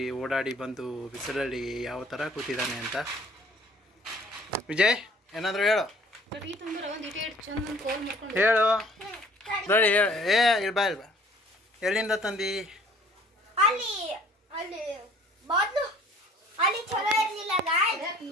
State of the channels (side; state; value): both; normal; correlation 0.54